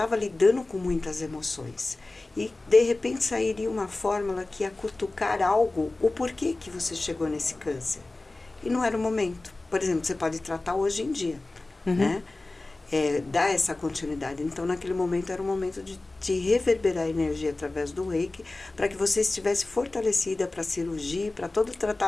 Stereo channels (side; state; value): right; quieter; 3.0 dB